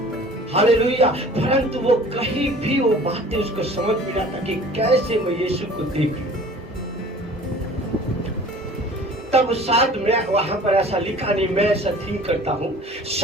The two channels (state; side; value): normal; both; correlation 0.46